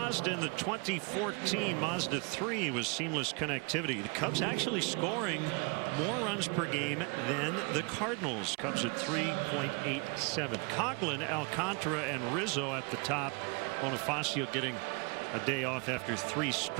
In the 2014 Mazda 3 was seamless connectivity. The Cubs actually scoring more runs per game than the Cardinals. Cubs at 3.87. Coughlin, Alcantara, and Rizzo at the top. Bonifacio getting a day off after 3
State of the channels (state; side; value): quieter; left; 31.5 dB